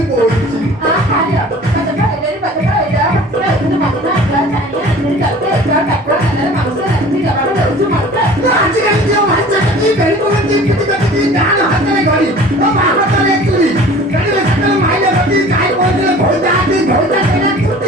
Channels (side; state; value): both; normal; correlation 0.45